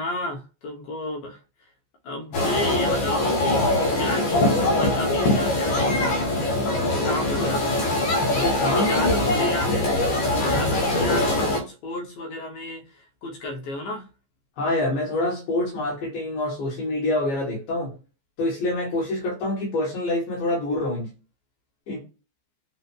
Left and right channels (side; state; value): right; late; 14 ms